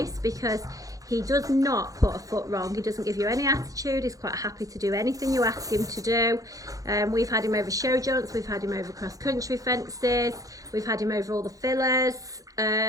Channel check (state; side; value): late; left; 0.17 ms